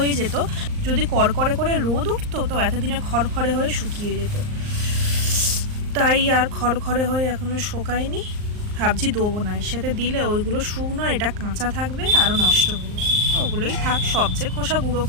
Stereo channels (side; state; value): left; late; 39 ms